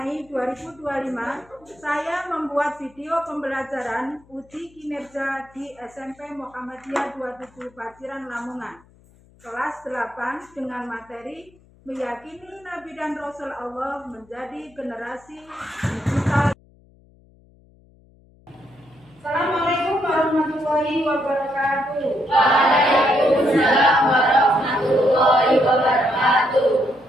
2025, saya membuat video pembelajaran uji kinerja di SMP Muhammadiyah 27 Paciran, Lamongan, kelas 8 dengan materi meyakini Nabi dan Rasul Allah menjadi generasi digital. Assalamualaikum warahmatullahi wabarakatuh. Waalaikumsalam warahmatullahi wabarakatuh.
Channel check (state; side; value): noise; left; hum, 29 dB below the sound